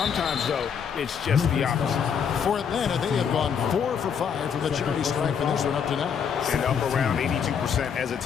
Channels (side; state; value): right; quieter; 7.2 dB